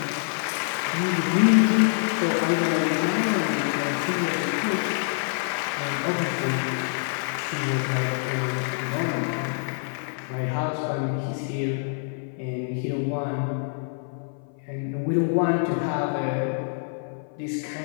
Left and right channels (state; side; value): silent; right; 55 dB below the other